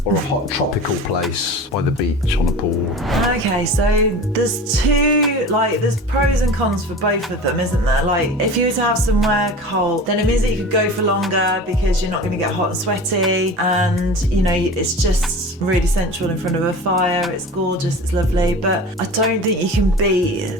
or a hot tropical place by the beach on a pool? Okay, so there's there's pros and cons for both of them, isn't there? Like, if you were to have somewhere cold, then it means that you could go for longer because you're not going to get hot and sweaty, and, you know, it's just really sensual in front of a fire. It's gorgeous, it's lovely, but I don't think you can beat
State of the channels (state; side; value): normal; both; correlation 0.35